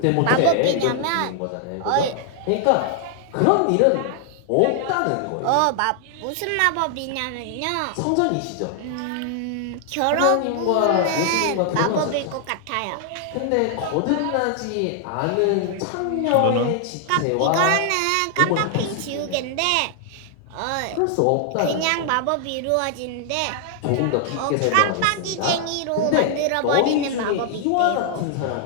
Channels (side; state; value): both; different; correlation 0.00